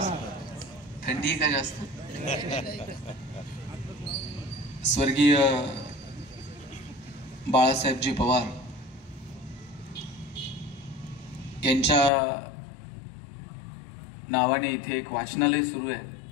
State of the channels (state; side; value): drops out; right; at 12.1 s